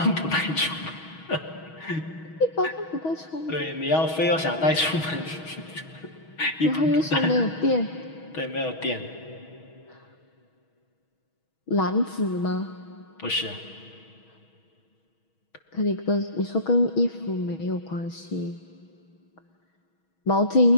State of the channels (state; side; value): late; right; 6.3 ms